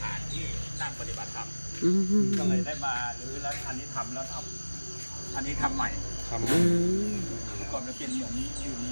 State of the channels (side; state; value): both; inverted; correlation -1.00